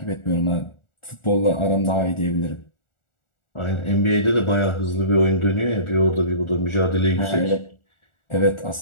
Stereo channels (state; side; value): late; right; 1.4 ms